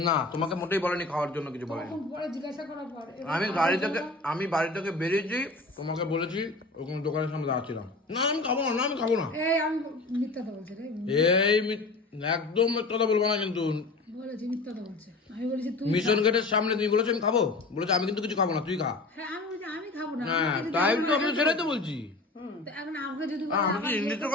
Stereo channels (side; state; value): right; quieter; 3.2 dB